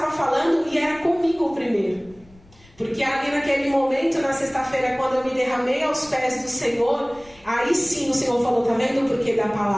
falando, e era comigo primeiro. Porque ali naquele momento, na sexta-feira, quando eu me derramei aos pés do Senhor, aí sim o Senhor falou, tá vendo o porquê da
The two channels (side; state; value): left; noise; rumble, 26 dB below the sound